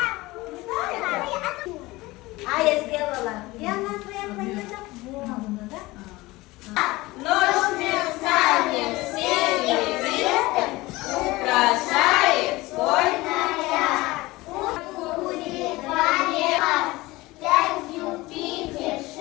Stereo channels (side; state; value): right; quieter; 20.4 dB